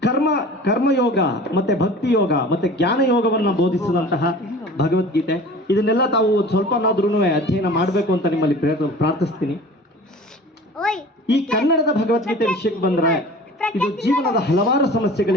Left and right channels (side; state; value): both; normal; correlation 0.42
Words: ಕರ್ಮಯೋಗ ಮತ್ತೆ ಭಕ್ತಿ ಯೋಗ ಮತ್ತೆ ಜ್ಞಾನ ಯೋಗವನ್ನು ಬೋಧಿಸಿದಂತಹ ಭಗವದ್ಗೀತೆ. ಇದನ್ನೆಲ್ಲ ತಾವು ಸ್ವಲ್ಪನಾದ್ರೂ ಅಧ್ಯಯನ ಮಾಡಬೇಕು ಅಂತ ನಿಮ್ಮಲ್ಲಿ ಪ್ರಾರ್ಥಿಸ್ತೀನಿ. ಈ ಕನ್ನಡದ ಭಗವದ್ಗೀತೆ ವಿಷಯಕ್ಕೆ ಬಂದರೆ ಇದು ಜೀವನದ ಹಲವಾರು